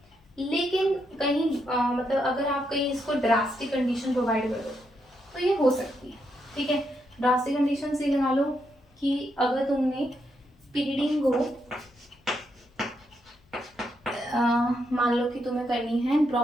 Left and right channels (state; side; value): normal; both; correlation 0.80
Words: लेकिन कहीं मतलब अगर आप कहीं इसको ड्रास्टिक कंडीशन प्रोवाइड कर दो तो ये हो सकती है, ठीक है। ड्रास्टिक कंडीशन से लगा लो कि अगर तुमने पिरिडीन को मान लो कि तुम्हें करनी है